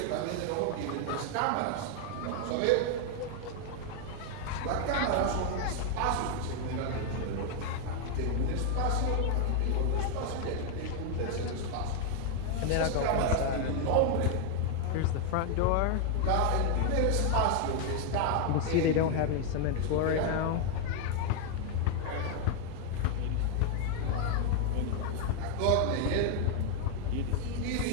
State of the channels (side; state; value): both; different; correlation 0.00